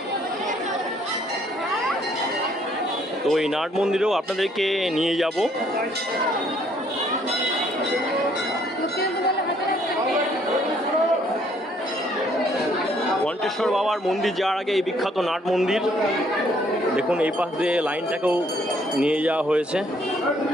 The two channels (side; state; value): both; normal; correlation 0.65